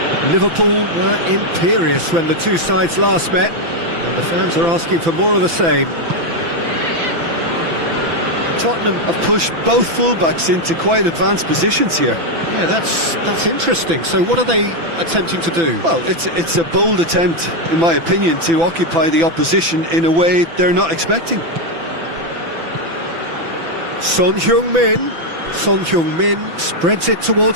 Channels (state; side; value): late; left; 6.0 ms